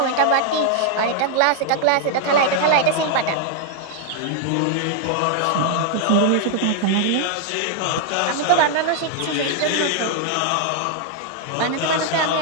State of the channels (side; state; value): both; different; correlation 0.00